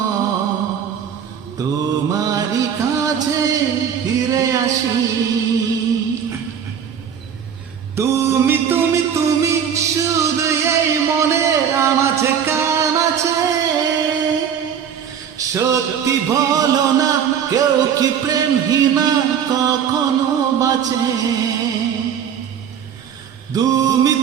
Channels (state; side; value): quieter; left; 8.1 dB